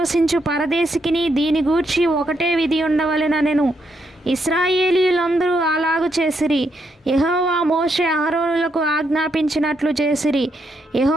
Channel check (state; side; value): normal; both; correlation 0.78